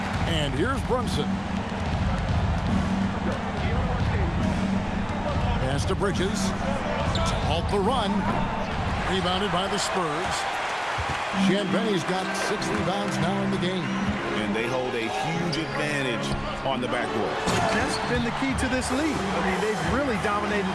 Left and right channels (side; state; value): both; identical; correlation 1.00